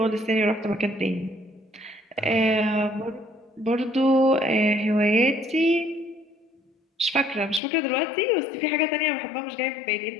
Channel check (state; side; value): drops out; right; at 7.6 s